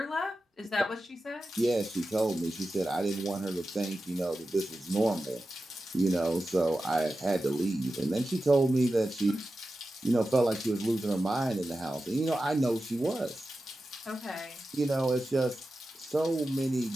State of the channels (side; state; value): both; normal; correlation 0.93